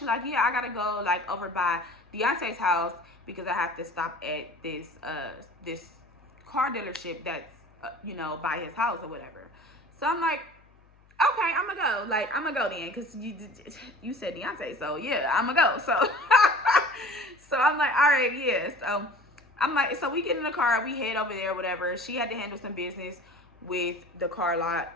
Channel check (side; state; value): left; noise; hum, 29 dB below the sound